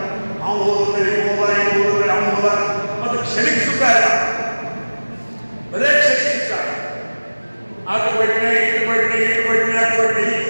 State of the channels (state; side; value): inverted; both; correlation -1.00